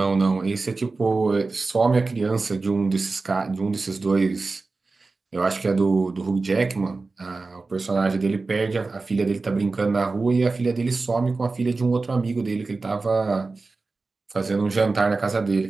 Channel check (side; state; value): left; quieter; 3.8 dB